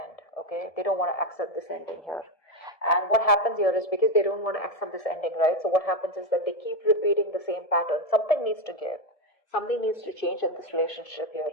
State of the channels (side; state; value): right; late; 1.7 ms